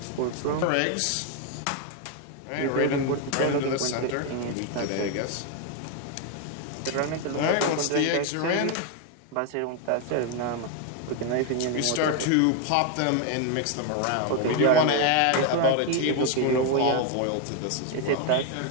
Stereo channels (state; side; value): different; both; correlation 0.01